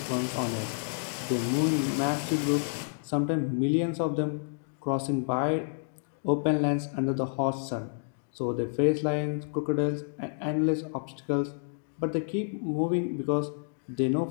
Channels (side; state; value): right; silent; digital silence